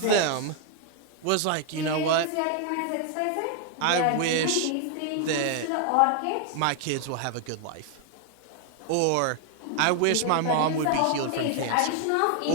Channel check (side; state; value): both; different; correlation 0.00